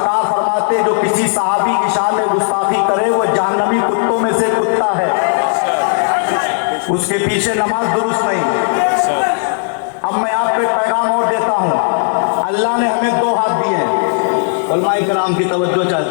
فرماتے جو کسی صحابی کی شان میں گستاخی کرے وہ جہنمی کتوں میں سے کتا ہے، اس کے پیچھے نماز درست نہیں۔ اب میں آپ کو ایک پیغام اور دیتا ہوں، اللہ نے ہمیں دو ہاتھ دیے ہیں، علماء کرام کی توجہ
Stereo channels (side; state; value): right; silent; digital silence